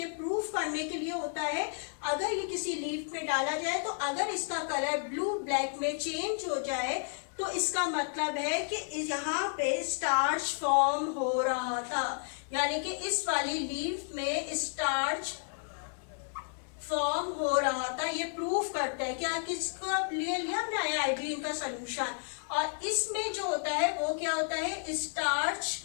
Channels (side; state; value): right; silent; 56 dB below the other